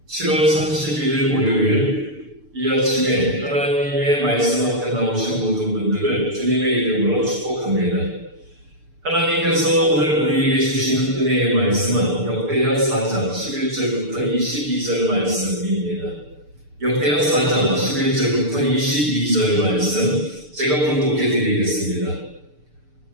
7월 31일 목요일 이 아침에 하나님의 말씀 앞에 나오신 모든 분들을 주님의 이름으로 축복합니다. 하나님께서 오늘 우리에게 주시는 은혜의 말씀은 역대하 4장 11절부터 22절 말씀입니다. 역대하 4장 11절부터 22절 말씀 제가 봉독해 드리겠습니다.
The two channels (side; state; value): left; late; 6.7 ms